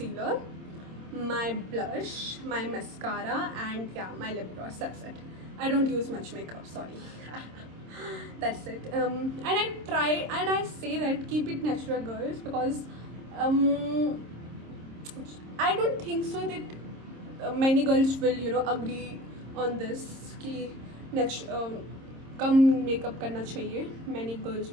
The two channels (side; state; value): left; late; 26 ms